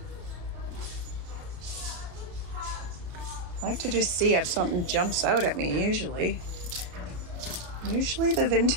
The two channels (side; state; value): left; late; 33 ms